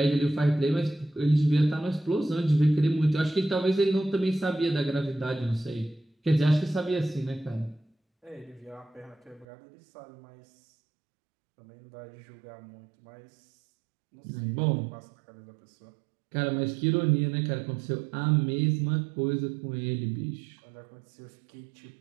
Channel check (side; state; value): left; drops out; at 9.5 s